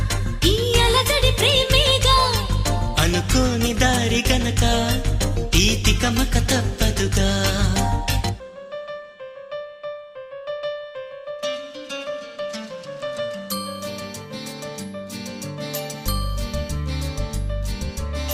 ఈ అలజడి ప్రేమేగా, అనుకోని దారి గనక ఈ తికమక తప్పదుగా.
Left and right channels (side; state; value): both; identical; correlation 1.00